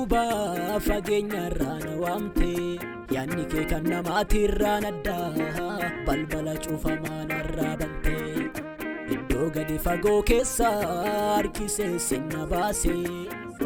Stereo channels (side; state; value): both; identical; correlation 1.00